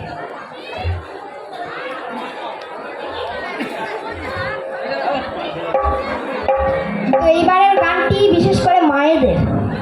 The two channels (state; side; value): identical; both; correlation 1.00